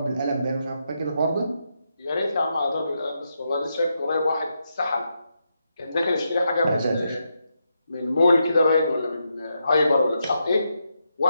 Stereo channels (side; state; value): both; inverted; correlation -0.83